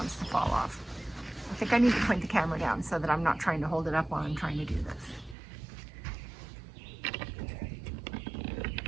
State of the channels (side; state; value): left; drops out; at 5.4 s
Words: to fall off. I think I need to point the camera down so that I'm not trying to hold it up while I'm trying to do this.